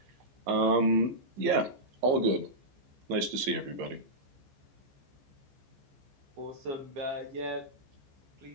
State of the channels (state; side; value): late; left; 15 ms